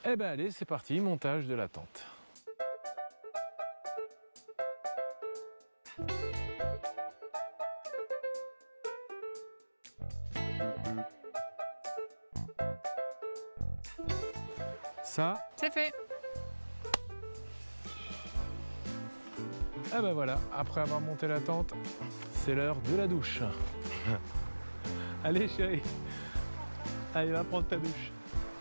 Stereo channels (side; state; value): both; inverted; correlation -1.00